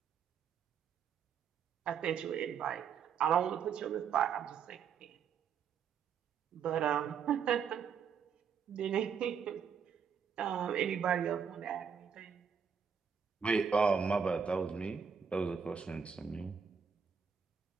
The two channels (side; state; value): left; quieter; 6.8 dB